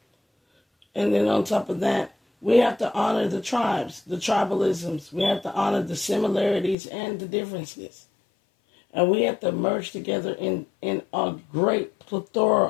And then on top of that, we have to honor the tribes, the tribalisms. We have to honor the similarities and the differences. And we have to merge together in a great plethora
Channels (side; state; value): right; drops out; at 6.8 s